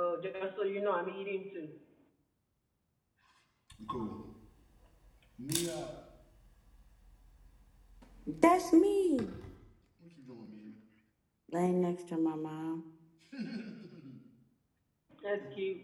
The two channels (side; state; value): both; identical; correlation 1.00